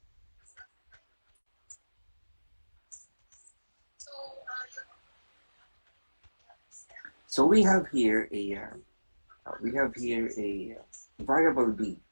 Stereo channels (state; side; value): inverted; both; correlation -1.00